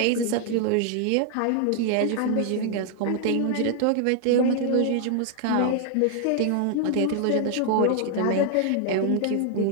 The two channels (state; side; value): different; both; correlation 0.00